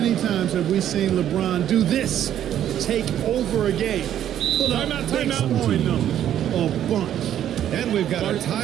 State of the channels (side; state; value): left; quieter; 10.8 dB